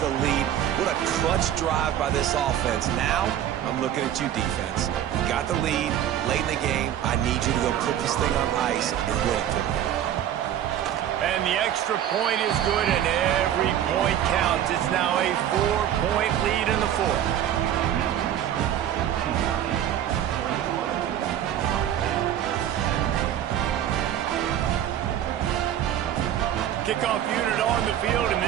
lead. What a clutch drive by this offense. Now, I'm looking at you, defense. You got the lead late in the game. I need you to go put this thing on ice and win it for me. And the extra point is good, and every point counts. It's now a 4-point lead in the 4th. Kickoff unit on the field, and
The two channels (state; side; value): quieter; left; 10.8 dB